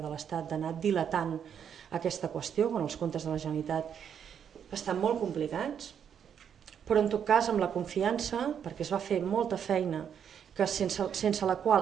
de l'Estat d'anar dilatant aquesta qüestió, quan els comptes de la Generalitat estan molt complicats, però en tot cas amb la confiança, perquè es va fer molta feina que sense la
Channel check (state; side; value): quieter; left; 8.2 dB